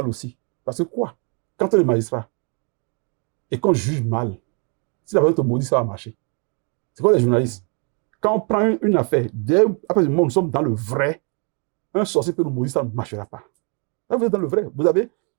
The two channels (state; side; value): quieter; left; 37.4 dB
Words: aussi. Parce que quoi? Quand on est magistrat et qu'on juge mal, si la personne te maudit, ça va marcher. C'est quoi les journalistes? Quand on prend une affaire, après le moment où nous sommes dans le vrai, un sorcier peut nous maudire, ça ne marchera pas. Là, vous êtes dans le vrai. Vous avez